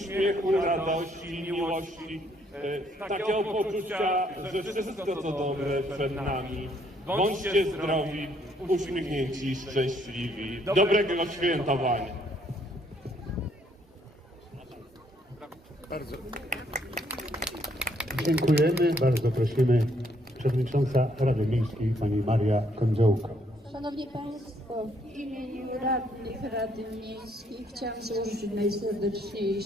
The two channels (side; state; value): both; normal; correlation 0.69